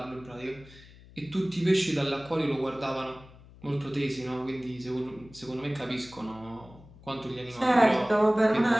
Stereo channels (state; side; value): noise; left; hum, 22 dB below the sound